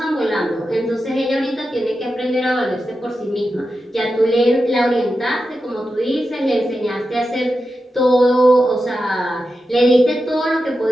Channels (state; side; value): normal; both; correlation 0.90